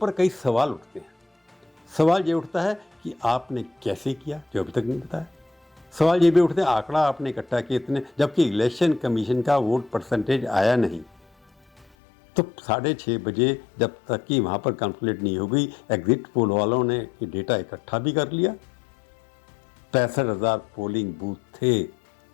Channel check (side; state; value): right; drops out; at 11.9 s